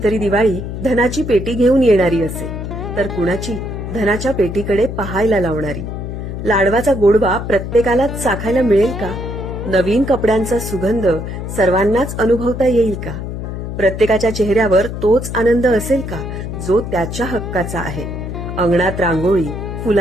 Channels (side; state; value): left; noise; hum, 6 dB below the sound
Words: तरी दिवाळी धनाची पेटी घेऊन येणारी असेल, तर कुणाची धनाच्या पेटीकडे पाहायला लावणारी. लाडवाचा गोडवा प्रत्येकालाच चाखायला मिळेल का? नवीन कपड्यांचा सुगंध सर्वांनाच अनुभवता येईल का? प्रत्येकाच्या चेहऱ्यावर तोच आनंद असेल का, जो त्याच्या हक्काचा आहे? अंगणात रांगोळी,